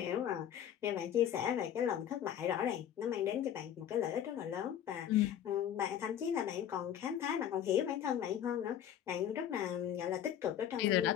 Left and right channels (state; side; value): quieter; right; 10.1 dB